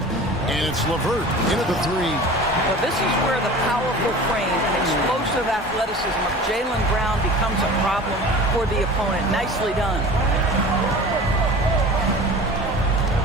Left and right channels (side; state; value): both; normal; correlation 0.39